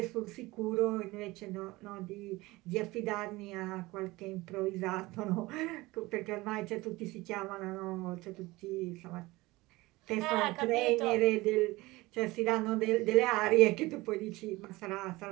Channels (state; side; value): quieter; left; 20.7 dB